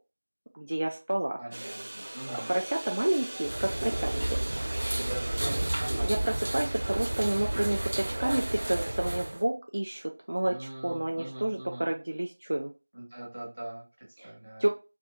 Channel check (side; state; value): both; inverted; correlation -1.00